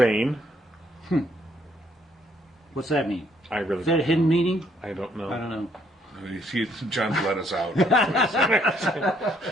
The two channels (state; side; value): normal; both; correlation 0.68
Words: What's that mean? I really. Is that a hidden meaning? I don't know. I don't know. John's let us out.